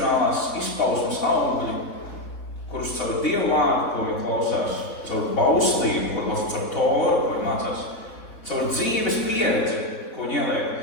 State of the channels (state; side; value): late; right; 3.4 ms